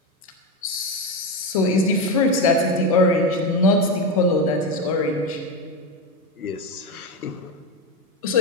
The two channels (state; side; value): normal; both; correlation 0.14